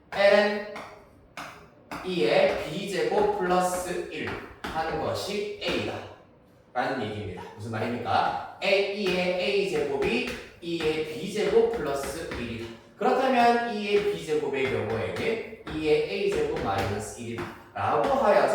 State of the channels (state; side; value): identical; both; correlation 1.00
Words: ln 2의 b제곱 플러스 1 하는 것이 A다 라는 얘기입니다. 무슨 말입니까? A의 A제곱이 2의 B제곱 플러스 1이다. 그렇다면 2의 B제곱의 경우에는 2의 A제곱 마이너스 1이다 라고